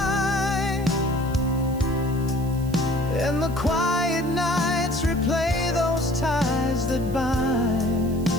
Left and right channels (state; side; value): noise; right; hiss, 20 dB below the sound